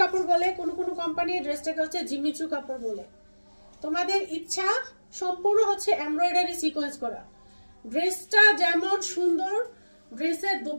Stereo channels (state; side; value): inverted; both; correlation -1.00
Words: কাপড় বলে, কোনো কোম্পানি এই ড্রেসটাকে হচ্ছে জিমিচু কাপড় বলে। তোমাদের ইচ্ছা। সম্পূর্ণ হচ্ছে এমব্রয়ডারি সিকোয়েন্স করা। ড্রেসটা যেমন সুন্দর, ড্রেসের